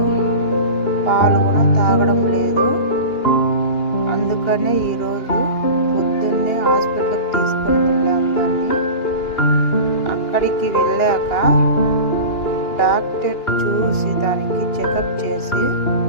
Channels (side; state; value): right; late; 2.9 ms